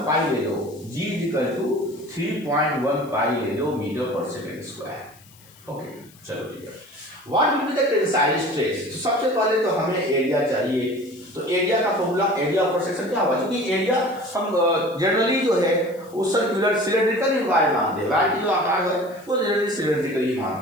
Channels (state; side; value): noise; left; hiss, 25 dB below the sound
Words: ले लो, G = 3.15 ले लो मीटर/सेकंड²। ओके, चलो ठीक है। What will be the tensile stress, तो सबसे पहले तो हमें एरिया चाहिए, तो एरिया का formula, area of cross section क्या होगा, क्योंकि एरिया हम जनरली जो है वो सर्कुलर सिलेंड्रिकल ही वायर मानते हैं, वायर की जो आकार है वो जनरली सिलेंड्रिकल ही